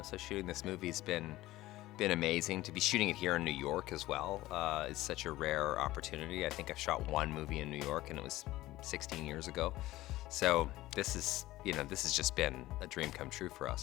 so shooting this movie's been amazing. To be shooting it here in New York as well is such a rare opportunity. I think I've shot one movie in New York and it was 16 years ago. So this has just been a dream come true for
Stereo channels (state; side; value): quieter; right; 16.9 dB